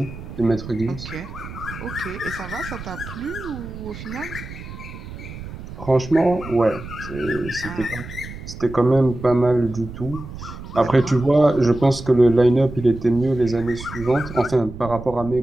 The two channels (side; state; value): right; noise; rumble, 12 dB below the sound